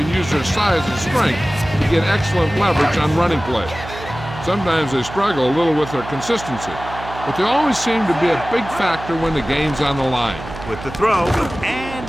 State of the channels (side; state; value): right; noise; hum, 12 dB below the sound